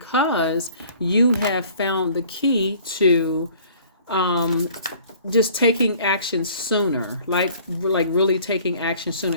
you have found the key to just taking action sooner, like really taking action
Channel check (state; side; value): inverted; both; correlation -0.53